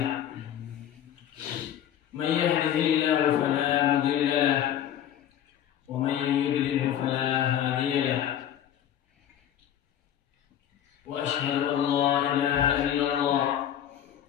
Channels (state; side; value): quieter; right; 10.6 dB